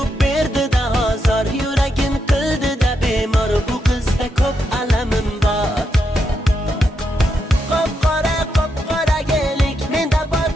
berdi-da ozor, yuragim qildi-da bemor. Bu qizda ko'p alamim bor. Qop-qora gelik, menda bor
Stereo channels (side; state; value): both; normal; correlation 0.83